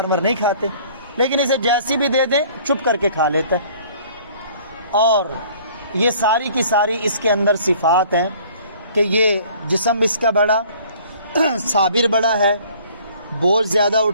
نہیں کھاتے، لیکن اسے جیسی بھی دے دیں چپ کر کے کھا لیتا ہے۔ اور یہ ساری کی ساری اس کے اندر صفات ہیں کہ یہ جسم اس کا بڑا، صابر بڑا ہے، بوجھ زیادہ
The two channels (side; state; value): both; inverted; correlation -0.54